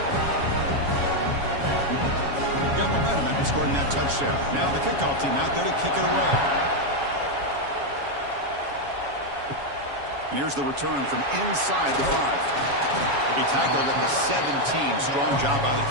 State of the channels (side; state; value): left; late; 7.2 ms